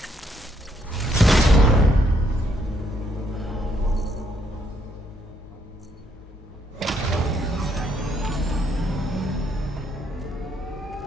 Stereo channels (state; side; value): normal; both; correlation 0.72